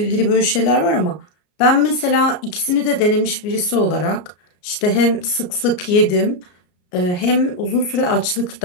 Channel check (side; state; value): right; late; 33 ms